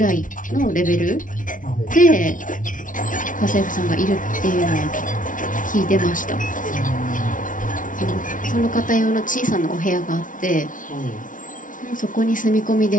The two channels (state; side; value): late; right; 0.38 ms